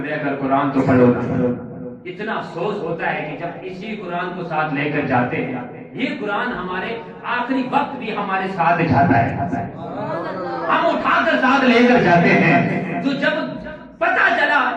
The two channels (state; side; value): identical; both; correlation 1.00